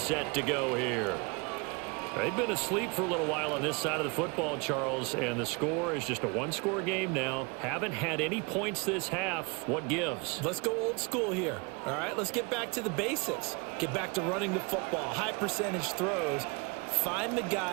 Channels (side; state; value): left; quieter; 29.8 dB